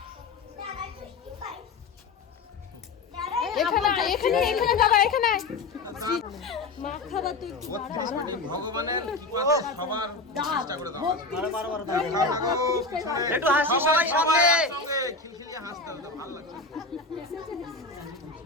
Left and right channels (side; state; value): right; quieter; 3.6 dB